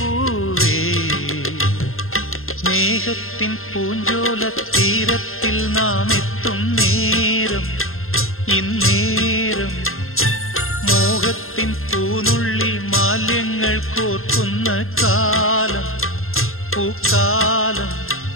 സ്നേഹത്തിൻ പൂഞ്ചോല തീരത്തിൽ നാം എത്തും നേരം ഇന്നേരം. മോഹത്തിൻ പൂനുള്ളി മാല്യങ്ങൾ കോർക്കുന്ന കാലം പൂക്കാലം.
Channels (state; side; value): late; right; 0.61 ms